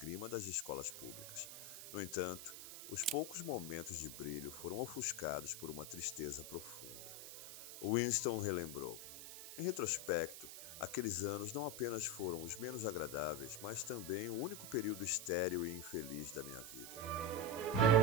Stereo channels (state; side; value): noise; right; hiss, 10 dB below the sound